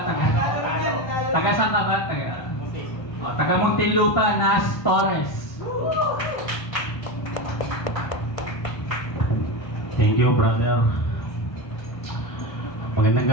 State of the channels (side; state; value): right; late; 1.2 ms